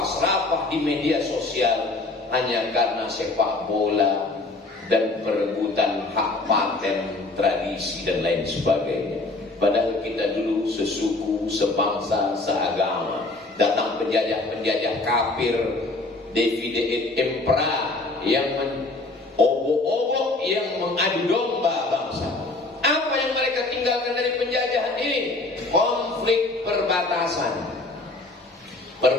serapah di media sosial hanya karena sepak bola dan perebutan hak paten, tradisi dan lain sebagainya. Padahal kita dulu sesuku, sebangsa, seagama. Datang penjajah-penjajah kafir, Davide et Impera yang obok-obok, yang mengadu domba bangsa. Apa yang mereka tinggalkan dari penjajahan ini? Konflik perbatasan.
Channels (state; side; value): quieter; right; 3.1 dB